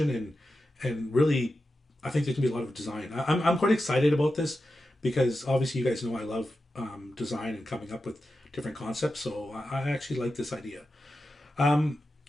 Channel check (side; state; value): both; normal; correlation 0.91